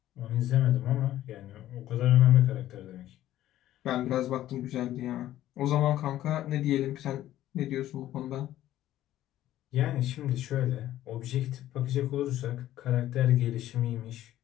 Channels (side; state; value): right; quieter; 13.5 dB